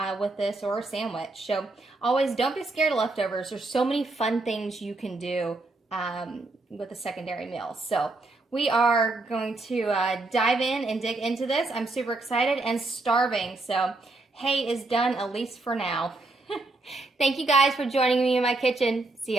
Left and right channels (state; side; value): quieter; left; 3.1 dB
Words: with this, or a sandwich. So always don't be scared of leftovers. There's so many fun things you can do with a secondary meal. So we are going to dive in and dig into this. I'm super excited and starving. So hay is done, at least for now. Thank you guys for joining me in my kitchen. See